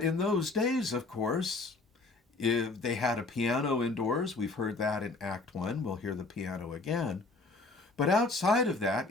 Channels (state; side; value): quieter; right; 3.5 dB